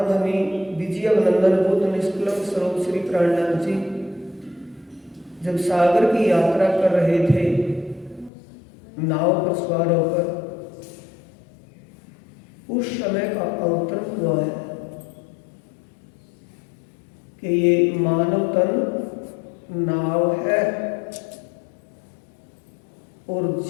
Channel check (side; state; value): right; drops out; at 8.3 s